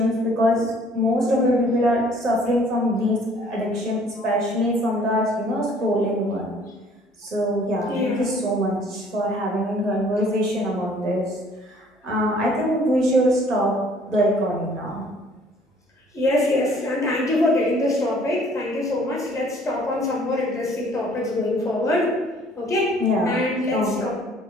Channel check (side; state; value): both; normal; correlation 0.57